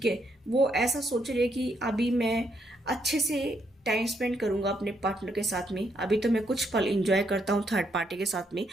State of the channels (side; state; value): both; normal; correlation 0.75